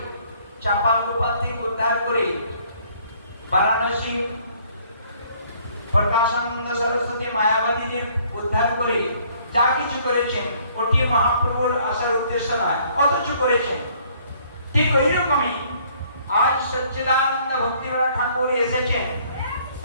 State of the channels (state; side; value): inverted; both; correlation -0.61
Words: চাপাল গোপাল থেকে উদ্ধার করে, বারাণসী প্রকাশানন্দ সরস্বতী মায়াবাদীদের উদ্ধার করে যা কিছু করেছেন, ওটি মহাপ্রভুর আসার উদ্দেশ্য নয়, অথচ করেছেন। ঠিক ওই রকমই আজ সচ্চিদানন্দ ভক্তিবেদান্ত ঠাকুর এসেছেন,